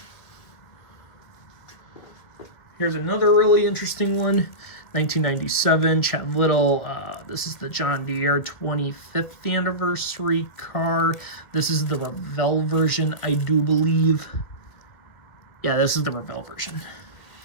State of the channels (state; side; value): late; right; 2.0 ms